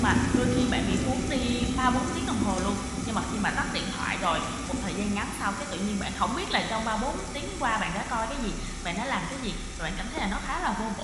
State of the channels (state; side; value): identical; both; correlation 1.00